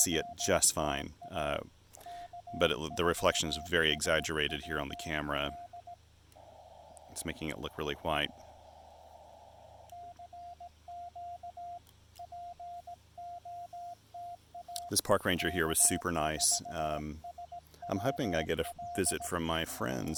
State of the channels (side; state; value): both; identical; correlation 1.00